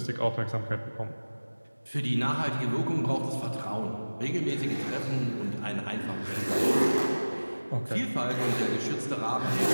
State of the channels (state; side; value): inverted; both; correlation -1.00